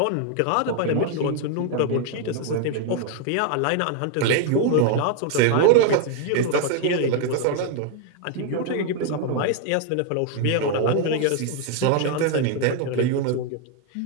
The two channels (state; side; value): different; both; correlation 0.00